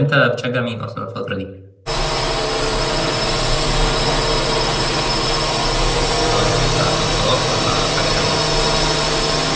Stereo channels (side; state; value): both; identical; correlation 1.00